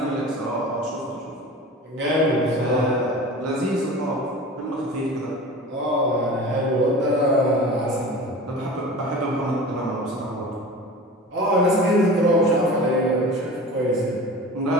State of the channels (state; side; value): normal; both; correlation 0.36